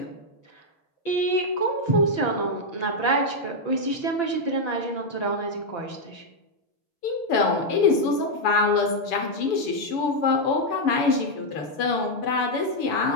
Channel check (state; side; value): late; right; 7.1 ms